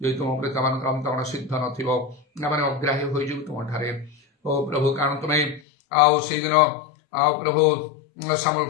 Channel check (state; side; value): drops out; right; at 5.6 s